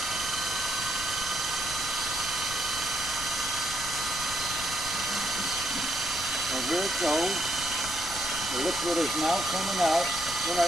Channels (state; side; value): noise; left; rumble, 12 dB below the sound